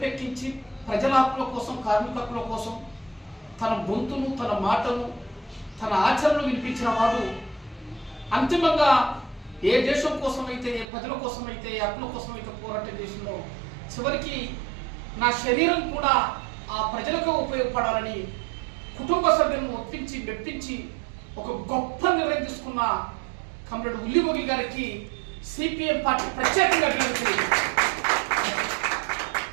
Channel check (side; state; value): left; drops out; at 10.9 s